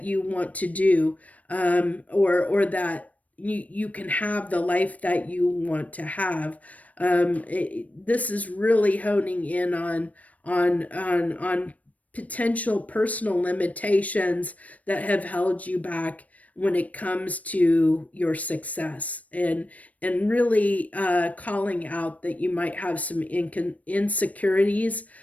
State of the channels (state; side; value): late; right; 0.069 ms